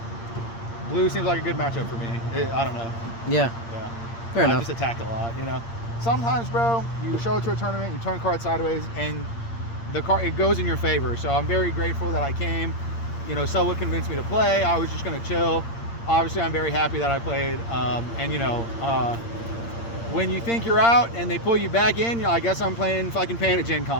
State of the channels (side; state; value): right; late; 8.7 ms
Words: Blue seems like a good matchup for me. I don't know. Yeah. Yeah. Fair I enough. just attacked a lot, you know. Sometimes, bro, you show up to a tournament, you turn cards sideways, and the card it goes in your favor. So I'm very grateful that I came. You know, someone convinced me to play. I was just gonna chill. Obviously, I'm very happy that I played. And you know, when you think you're out and they pull you back in, you know, I guess I'm playing fucking Pan at Gen